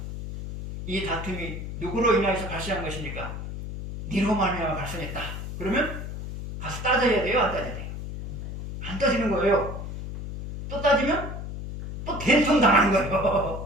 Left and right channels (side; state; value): left; noise; hum, 7 dB below the sound